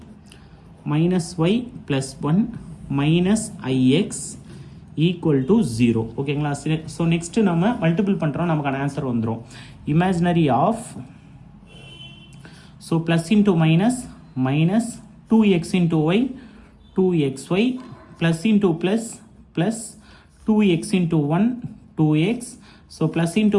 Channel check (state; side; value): identical; both; correlation 1.00